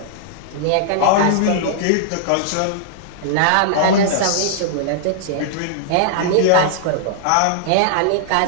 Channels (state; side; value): different; both; correlation -0.01